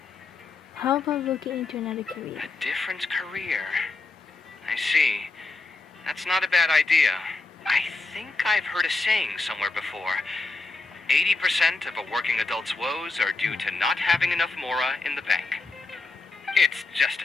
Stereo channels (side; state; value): right; quieter; 3.5 dB